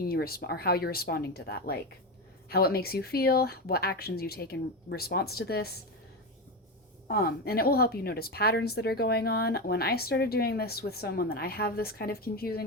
you respond, or how you're responding to that, like how it makes you feel, what actions you take in response to this. And it will help you notice patterns that are going on. When I started doing this with someone that I have this kind of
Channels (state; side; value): normal; both; correlation 0.16